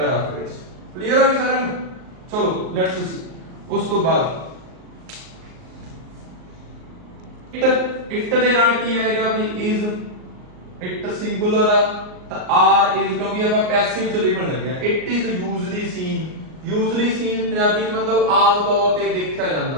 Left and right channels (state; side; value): late; left; 38 ms